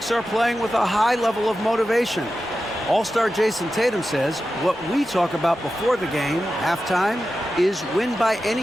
are playing with a high level of motivation. All-star Jason Tatum says what we talk about before the game, halftime, is win by any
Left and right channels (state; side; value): normal; both; correlation 0.92